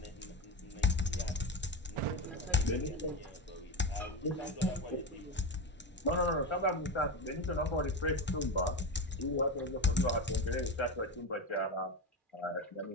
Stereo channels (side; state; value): both; normal; correlation 0.18